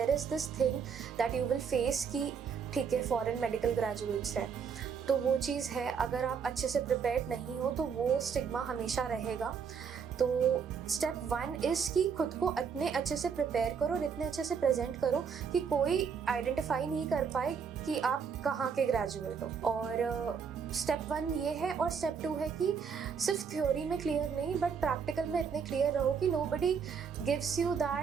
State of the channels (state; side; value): quieter; left; 6.4 dB